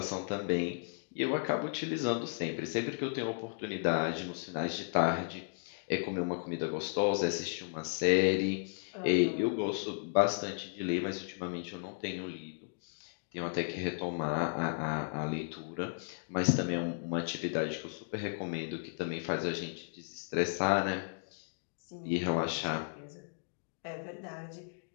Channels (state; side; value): silent; right; digital silence